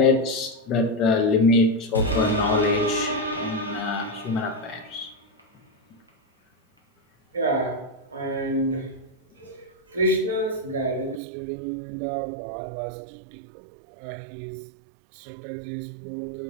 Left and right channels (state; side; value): drops out; left; at 11.2 s